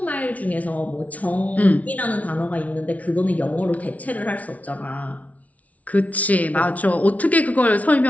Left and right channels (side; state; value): right; late; 0.069 ms